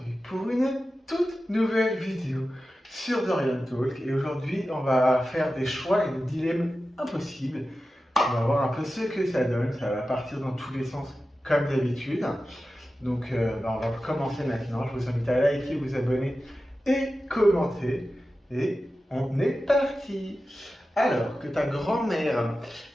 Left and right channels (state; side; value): normal; both; correlation 0.93